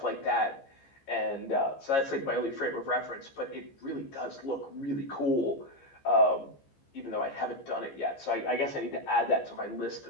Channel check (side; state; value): right; late; 15 ms